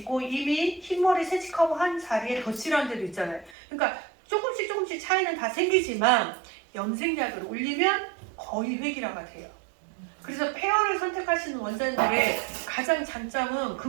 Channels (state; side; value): drops out; left; at 3.6 s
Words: 이미 흰머리 세척하고 한 자리에 덧칠한 데도 있잖아요. 그러니까 조금씩 차이는 다 생기지만 염색약을 올리면 거의 획일화가 돼요. 그래서 페어를 선택하시는 원장님들의 가장 장점은